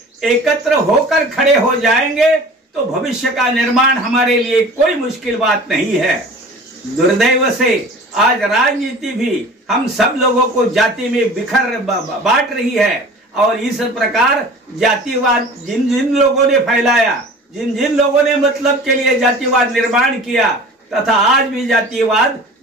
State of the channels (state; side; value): normal; both; correlation 0.42